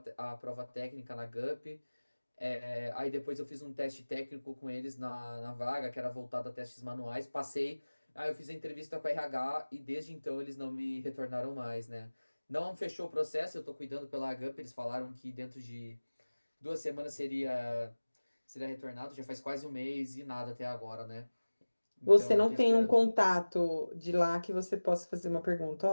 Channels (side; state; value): both; inverted; correlation -1.00